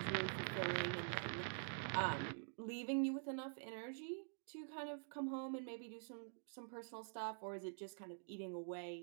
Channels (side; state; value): left; silent; digital silence